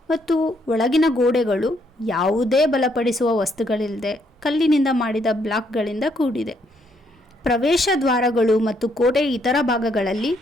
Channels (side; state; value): both; normal; correlation 0.72